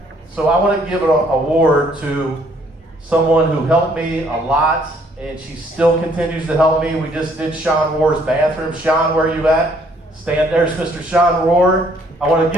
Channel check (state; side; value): normal; both; correlation 0.64